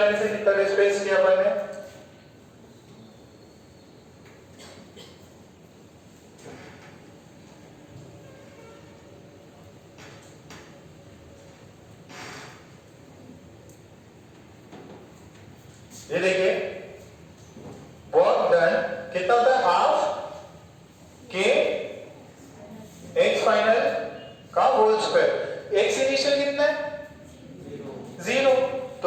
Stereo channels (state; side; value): identical; both; correlation 1.00